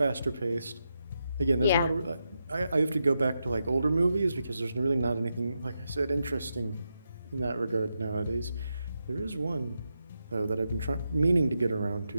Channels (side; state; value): both; inverted; correlation -0.86